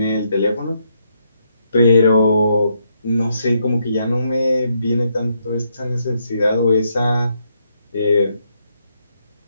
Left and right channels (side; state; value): both; inverted; correlation -0.76